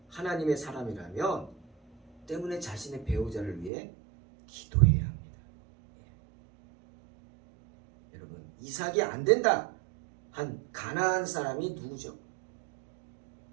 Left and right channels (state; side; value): drops out; left; at 3.7 s